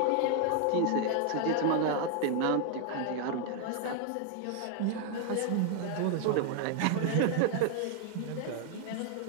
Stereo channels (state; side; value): different; both; correlation 0.00